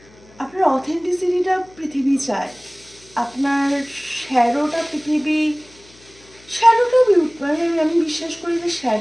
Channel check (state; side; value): noise; left; hum, 26 dB below the sound